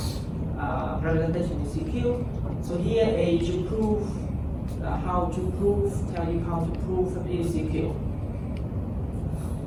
representation is secure. So here is to prove tell you how to prove that it is secure.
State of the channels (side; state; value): both; identical; correlation 1.00